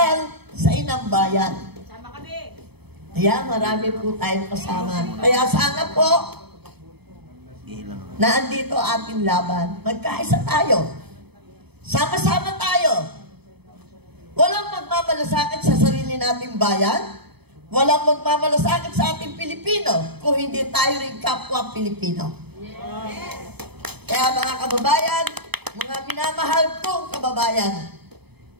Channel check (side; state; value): left; late; 0.97 ms